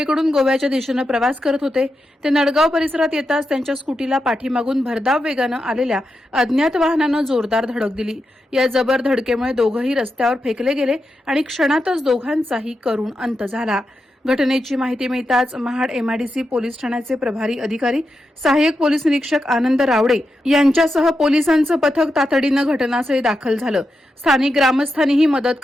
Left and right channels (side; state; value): both; normal; correlation 0.88